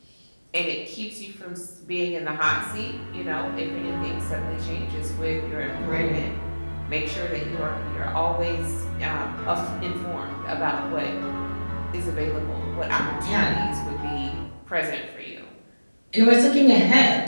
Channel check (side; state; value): both; inverted; correlation -1.00